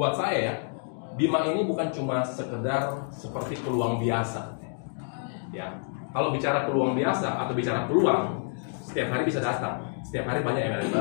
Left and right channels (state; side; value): silent; right; digital silence